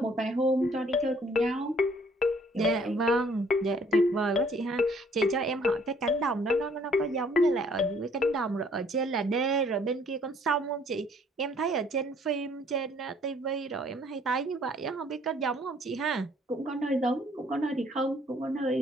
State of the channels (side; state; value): both; normal; correlation 0.61